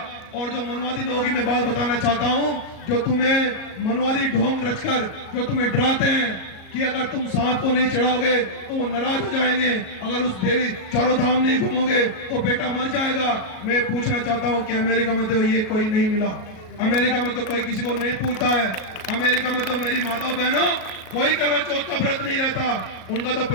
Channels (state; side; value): late; right; 37 ms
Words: और जो मनवादी लोग ही मैं बात बताना चाहता हूं, जो तुम्हें मनवादी ढोंग रचकर जो तुम्हें डराते हैं कि अगर तुम सांप को नहीं चढ़ाओगे तो वो नाराज हो जाएंगे, अगर उस देवी चारों धाम नहीं घूमोगे तो बेटा मर जाएगा। मैं पूछना चाहता हूं कि अमेरिका में तो ये कोई नहीं मिला, अमेरिका में तो कोई किसी को नहीं पूछता है, अमेरिका में तो मेरी माता बहनों कोई करवा चौथ का व्रत नहीं रहता, उनका तो